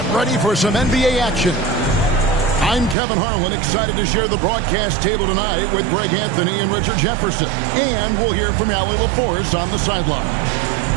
ready for some NBA action. I'm Kevin Harlan, excited to share the broadcast table tonight with Greg Anthony and Richard Jefferson. And we'll hear from Allie LaForce on the sideline.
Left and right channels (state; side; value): drops out; left; at 3.0 s